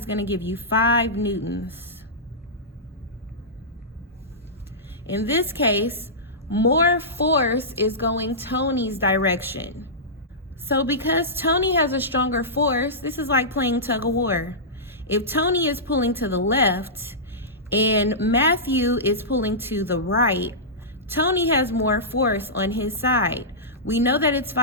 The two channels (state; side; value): normal; both; correlation -0.16